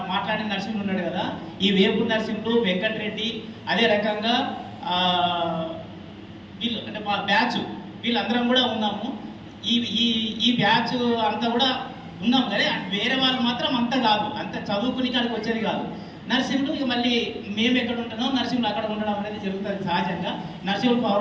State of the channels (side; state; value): both; identical; correlation 1.00